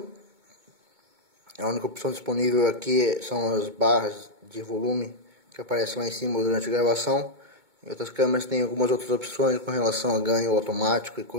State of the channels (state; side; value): late; left; 2.2 ms